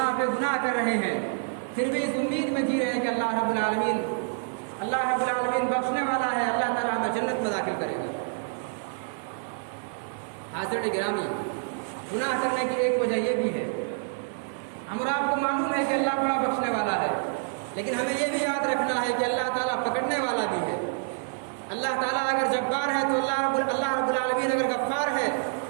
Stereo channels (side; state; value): left; silent; 60 dB below the other